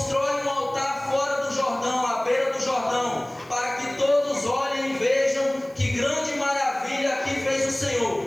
um altar fora do Jordão, à beira do Jordão, para que todos olhem e vejam que grande maravilha aqui fez o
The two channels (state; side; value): noise; right; hiss, 28 dB below the sound